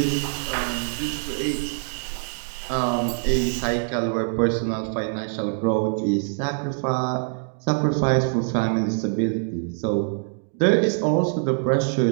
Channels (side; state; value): left; silent; digital silence